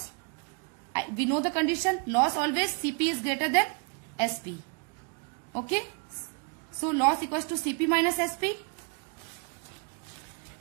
we know the condition, loss always CP is greater than SP. Okay. So loss equals to CP minus SP.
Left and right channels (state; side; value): quieter; left; 34.8 dB